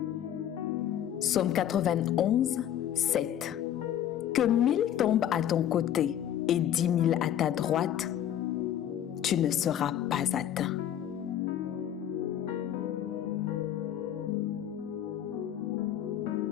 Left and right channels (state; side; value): quieter; right; 10.6 dB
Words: Psaume 91, 7. Que 1000 tombent à ton côté et 10 000 à ta droite, tu ne seras pas atteint.